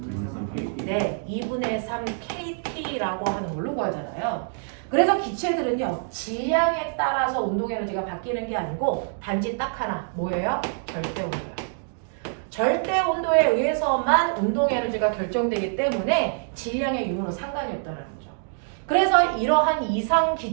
네, 2분의 3 kT라고 하는 걸로 구하잖아요. 그래서 기체들은요, 질량에 따라서 운동 에너지가 바뀌는 게 아니고 단지 딱 하나, 뭐예요? 절대 온도예요. 절대 온도에 의해서만 운동 에너지가 결정되기 때문에 질량의 유무는 상관이 없다는 거죠. 그래서 이러한 이상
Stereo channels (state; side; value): silent; left; digital silence